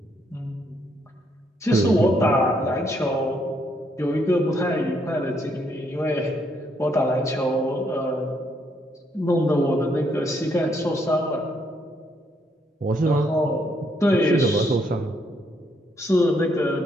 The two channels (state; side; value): normal; both; correlation 0.73